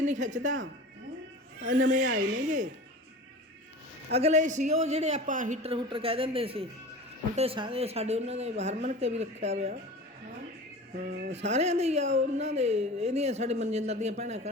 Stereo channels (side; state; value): both; normal; correlation 0.36